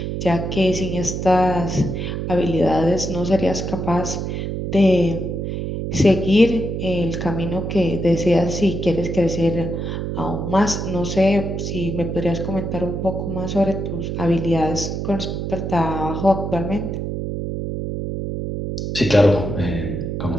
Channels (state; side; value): noise; right; hum, 3 dB below the sound